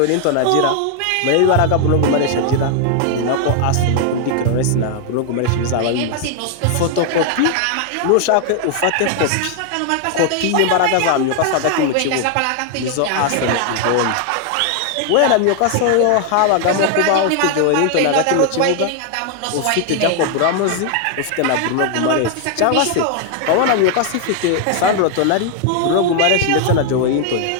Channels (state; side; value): different; both; correlation 0.00